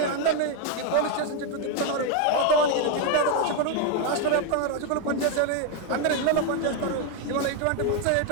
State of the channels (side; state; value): both; different; correlation 0.01